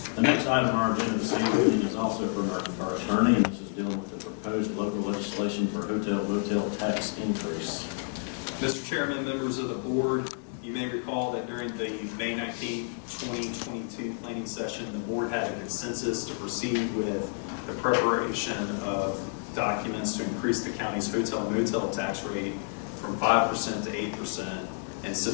The next item on our agenda this evening is also from our attorney, and this is dealing with the proposed local legislation for hotel motel tax increase. Mr. Chairman, members of the board, you may recall that during the May 19, 2022 planning session, the board had a consensus to proceed with the preparation of documents to increase the county's hotel motel tax rate from 5% to 8% and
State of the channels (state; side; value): silent; right; 57 dB below the other